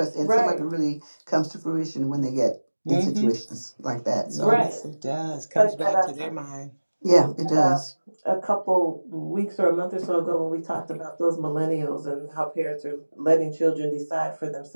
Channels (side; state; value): both; inverted; correlation -1.00